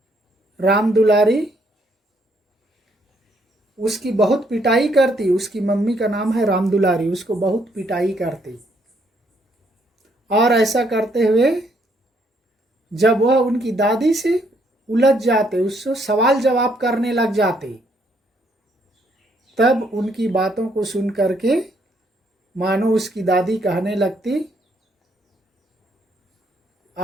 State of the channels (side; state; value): both; normal; correlation 0.70